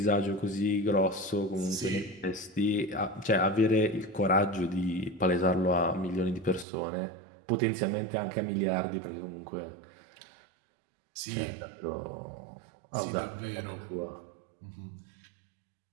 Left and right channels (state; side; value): drops out; left; at 6.7 s